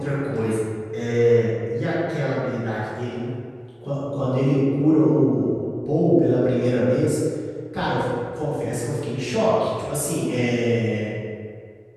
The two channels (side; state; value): both; identical; correlation 1.00